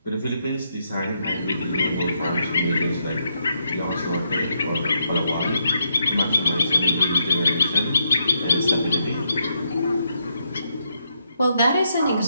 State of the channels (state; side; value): inverted; both; correlation -0.78